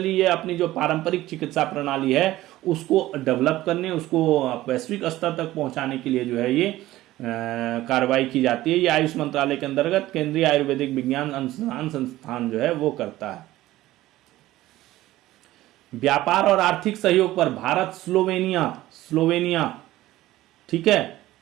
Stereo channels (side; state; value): left; quieter; 16.0 dB